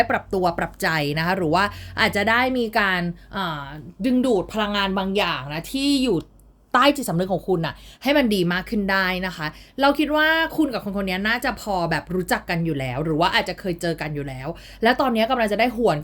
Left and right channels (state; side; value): identical; both; correlation 1.00